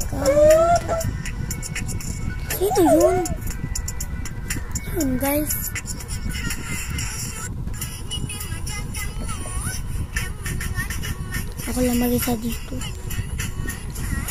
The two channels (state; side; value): identical; both; correlation 1.00